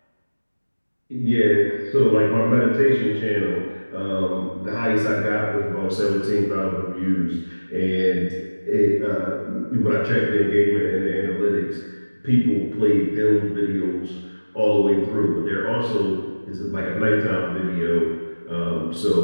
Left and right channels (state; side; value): inverted; both; correlation -1.00